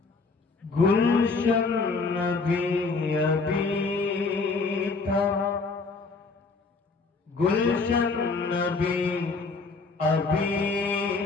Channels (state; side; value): quieter; right; 4.2 dB